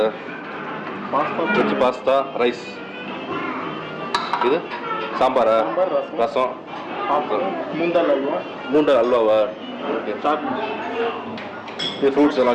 veg pasta rice. இது சாம்பாரா? ரசம். மூண்டல் அல்வாவா? ஓகே. இது ஃப்ரூட்ஸ் எல்லாம்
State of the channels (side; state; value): both; identical; correlation 1.00